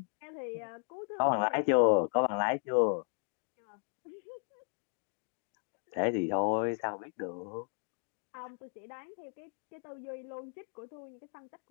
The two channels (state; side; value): silent; right; 54 dB below the other